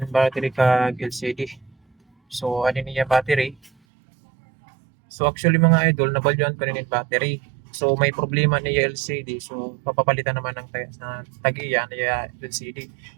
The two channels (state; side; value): drops out; left; at 3.7 s